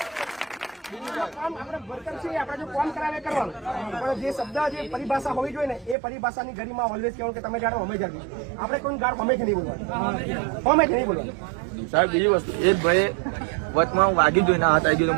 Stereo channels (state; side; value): drops out; left; at 6.0 s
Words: આપણે વર્કર છીએ, આપણે જો કામ કરાવે કરવાનું, પણ જે શબ્દ જે પરિભાષા હોવી જોઈએ ને એ પરિભાષાની ગરીમાં ઓલવેઝ કહેવાનું કે તમે જાણો અમે જાણો. આપણે કોઈ ગાળ હમેથી નહીં બોલવાની, હમેથી નહીં બોલવાની. સાહેબ બીજી વસ્તુ એક ભાઈ વચમાં વાગી જોઈને હાથ આવી ગયો